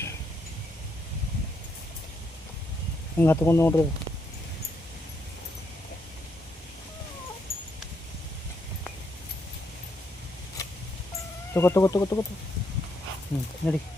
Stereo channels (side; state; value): both; normal; correlation 0.77